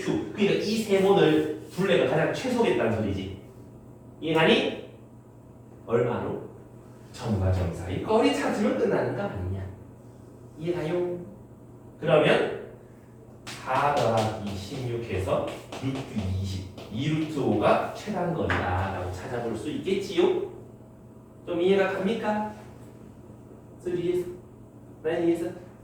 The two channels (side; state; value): both; identical; correlation 1.00